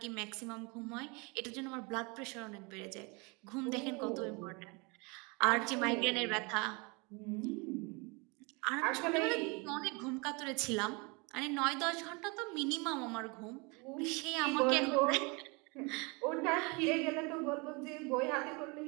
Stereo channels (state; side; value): quieter; left; 29.3 dB